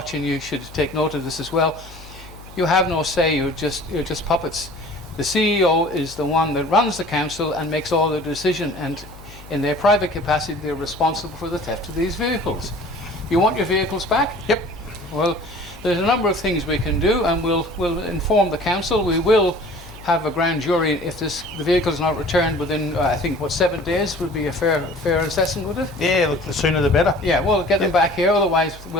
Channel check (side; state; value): left; noise; hum, 18 dB below the sound